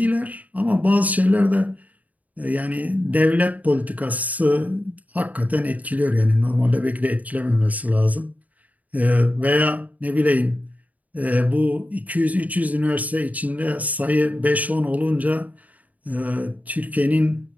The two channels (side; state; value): left; late; 0.074 ms